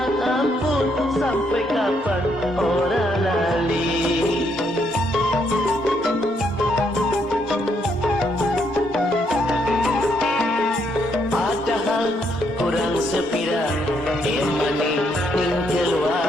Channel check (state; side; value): normal; both; correlation 0.74